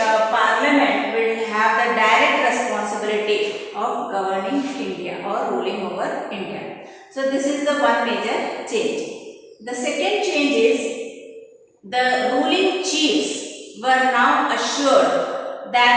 will have the direct responsibility of governing India or ruling over India. So this is the one major change. The second change is the ruling chiefs were now assured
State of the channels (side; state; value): both; identical; correlation 1.00